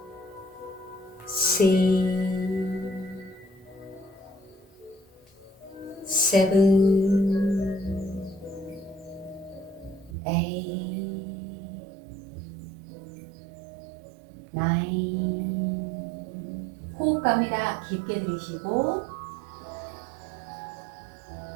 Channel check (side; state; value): left; drops out; at 10.2 s